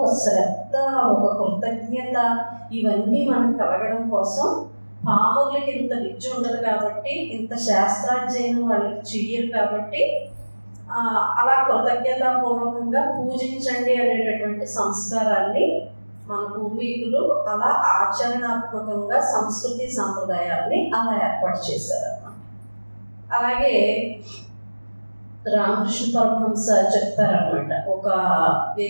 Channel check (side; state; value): both; inverted; correlation -1.00